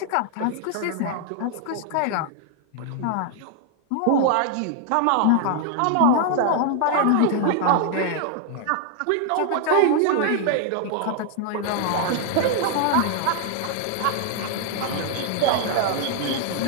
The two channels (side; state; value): both; different; correlation 0.00